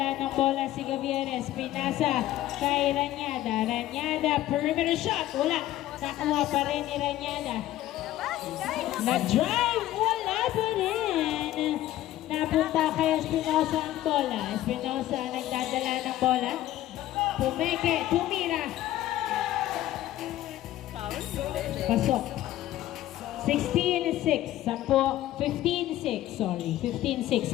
ng bola si Gavieres. Pinasa kay Ranyada. Ranyada, perimeter shot. Wala. Nakuha pa rin ni Ranyada. Nag-drive. Wala pa rin. Napunta kay Espinosa ang bola. Espinosa nagdadala ng bola. Pumeke. Tumira. Pasok. 16-6. 15-6. Sorry. 15-6.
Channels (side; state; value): right; quieter; 14.3 dB